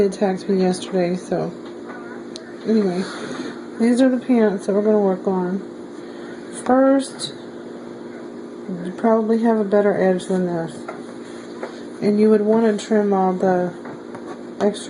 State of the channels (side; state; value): both; identical; correlation 1.00